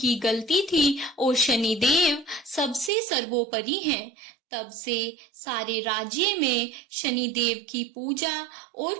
गलती थी और शनिदेव सबसे सर्वोपरि हैं। तब से सारे राज्य में शनिदेव की पूजा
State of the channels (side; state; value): left; drops out; at 2.9 s